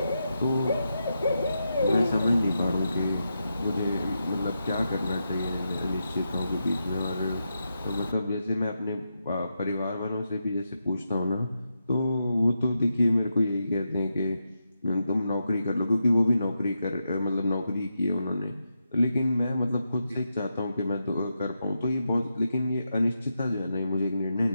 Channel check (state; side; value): inverted; both; correlation -0.86